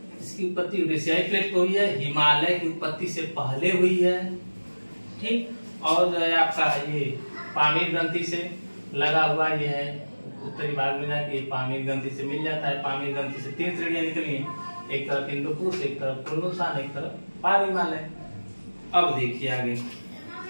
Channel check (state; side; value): inverted; both; correlation -1.00